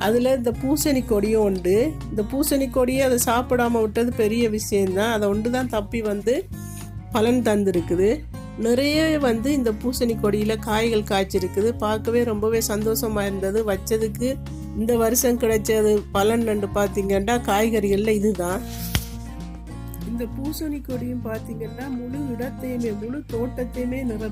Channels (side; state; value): both; identical; correlation 1.00